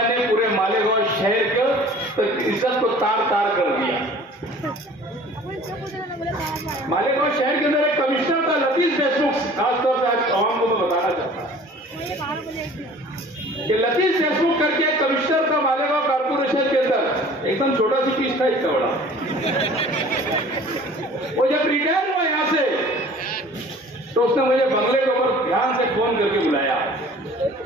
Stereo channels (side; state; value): both; normal; correlation 0.47